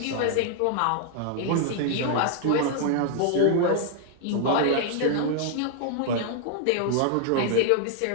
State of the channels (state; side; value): different; both; correlation 0.00